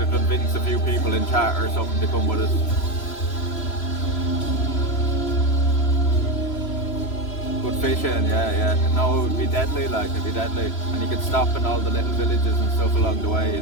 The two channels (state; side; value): late; right; 3.0 ms